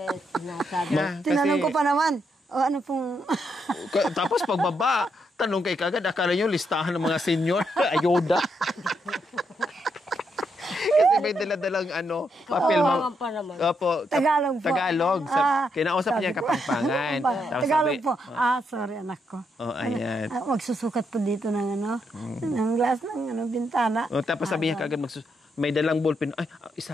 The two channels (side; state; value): both; normal; correlation 0.79